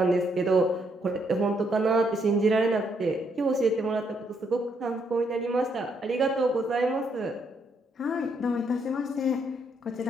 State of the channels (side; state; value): both; normal; correlation 0.74